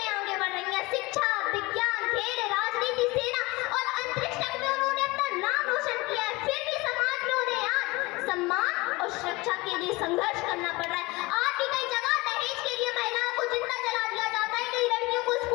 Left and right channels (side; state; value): right; quieter; 22.9 dB